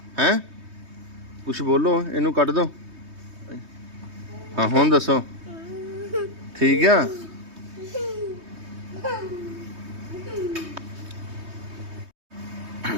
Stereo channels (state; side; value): late; left; 3.2 ms